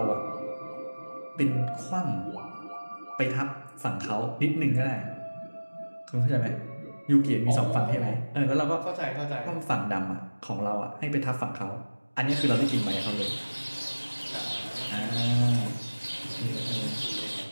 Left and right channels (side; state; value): both; inverted; correlation -1.00